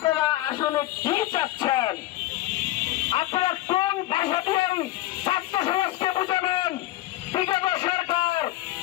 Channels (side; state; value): right; quieter; 16.2 dB